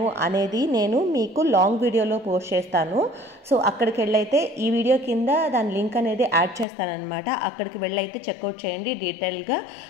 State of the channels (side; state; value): right; drops out; at 6.7 s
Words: అనేది నేను మీకు లాంగ్ వీడియోలో పోస్ట్ చేస్తాను. సో అక్కడికి వెళ్ళైతే ఈ వీడియో కింద దాని లింక్ అనేది యాడ్ చేస్తానన్నమాట. అక్కడికి వెళ్ళైతే చెక్అవుట్ చేయండి, డీటెయిల్గా